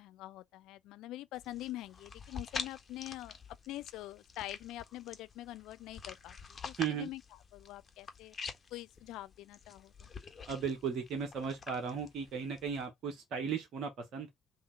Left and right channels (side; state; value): both; normal; correlation 0.42